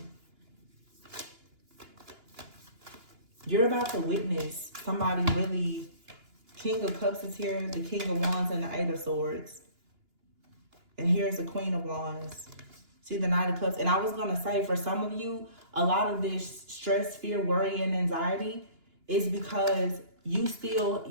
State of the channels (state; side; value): late; left; 2.9 ms